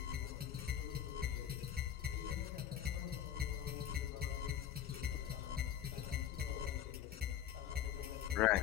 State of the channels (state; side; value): quieter; right; 10.1 dB